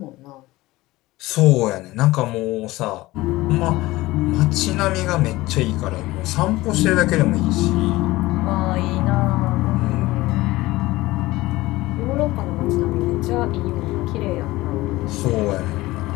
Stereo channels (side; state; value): right; quieter; 18.8 dB